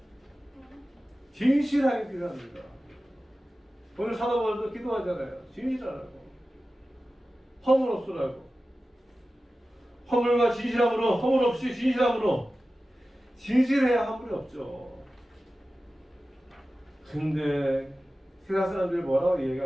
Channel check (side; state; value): both; normal; correlation 0.95